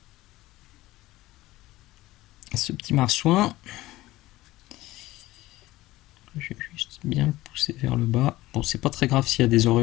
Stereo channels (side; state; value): right; quieter; 17.4 dB